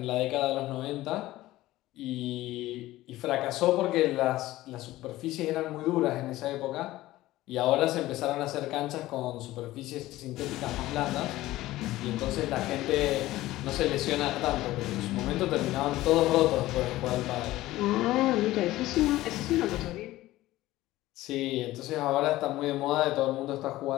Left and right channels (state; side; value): quieter; right; 16.6 dB